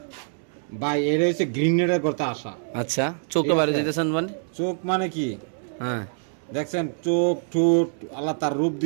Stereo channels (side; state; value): left; silent; digital silence